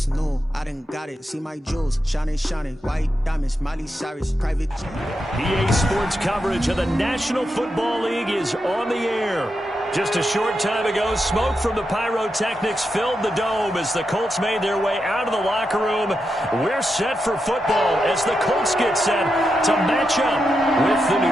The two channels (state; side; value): normal; both; correlation 0.86